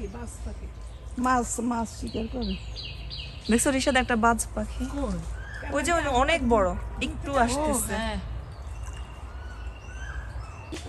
দেখছো রিশাদ একটা বাজ পাখি, ওই যে অনেক বড়, একটু আসতেছে।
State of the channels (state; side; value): identical; both; correlation 1.00